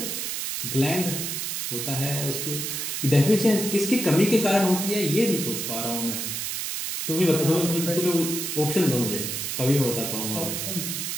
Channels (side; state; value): right; noise; hiss, 3 dB below the sound